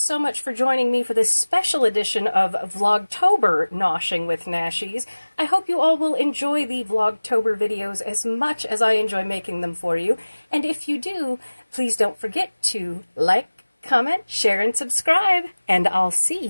much for joining me for this special edition of Vlogtober Noshing with Nashies. I hope you all will enjoy the Vlogtober videos as much as I enjoy making them for you. And if you do, please don't forget to like, comment, share, and subscribe. And I'll see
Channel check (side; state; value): both; inverted; correlation -1.00